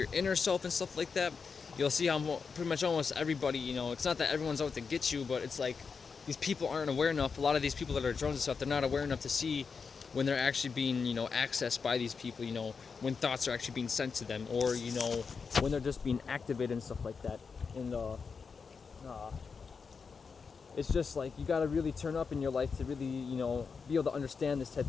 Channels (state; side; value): quieter; right; 5.4 dB